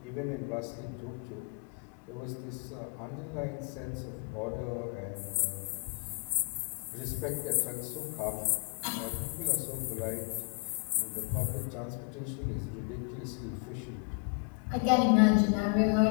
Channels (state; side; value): quieter; right; 36.9 dB